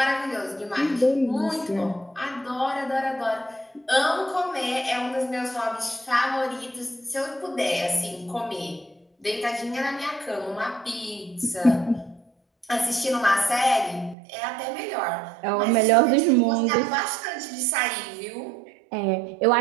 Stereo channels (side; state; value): left; drops out; at 14.2 s